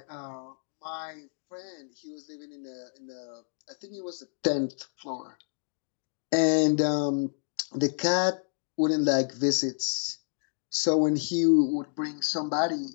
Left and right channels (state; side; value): silent; right; digital silence